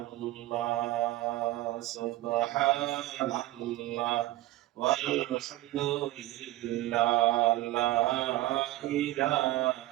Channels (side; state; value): left; quieter; 16.7 dB